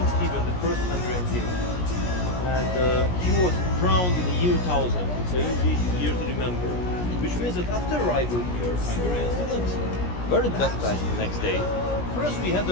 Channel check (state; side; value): late; right; 17 ms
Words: Stephen, the first Hungarian king, and he was crowned in the year 1000. It's an easy year to remember. Which means that after arrival here, Hungarians weren't baptized the next day. First we had